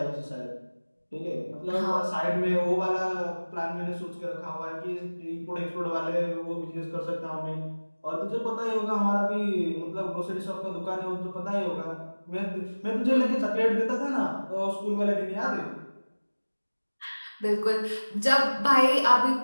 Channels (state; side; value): inverted; both; correlation -1.00